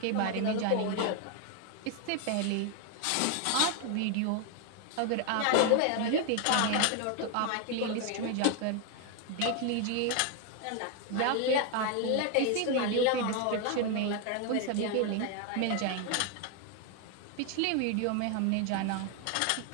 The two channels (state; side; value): different; both; correlation 0.01